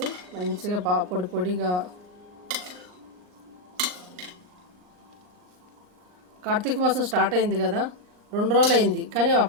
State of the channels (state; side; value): late; left; 39 ms